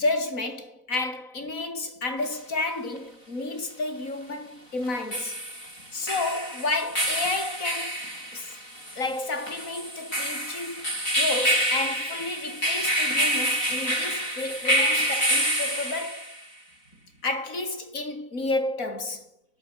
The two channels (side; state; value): right; late; 4.0 ms